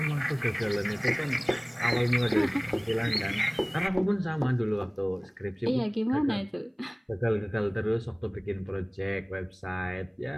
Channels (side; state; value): both; identical; correlation 1.00